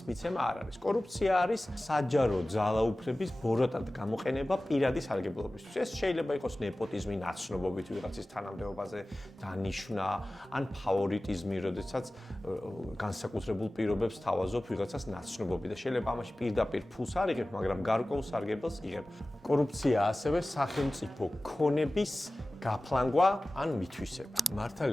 მიცემა არ არის. კორუფცია არის საჯარო ძალაუფლების ბოროტად გამოყენება პირადი სარგებლობისთვის. ეს შეიძლება იყოს ნეპოტიზმი, ნაცნობობით ვიღაცის თანამდებობაზე დანიშვნა, ან ფავორიტიზმი, როდესაც განსაკუთრებულ პირობებს თავაზობ ვიღაცას ნაცნობობი და შეიძლება ამაში პირდაპირ ფულს არ იღებ, მაგრამ გარკვეულ სარგებელს იღებ. კორუფცია ასევე სახელმწიფო ქონების გაფლანგვა ან მითვისება.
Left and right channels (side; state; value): both; normal; correlation 0.97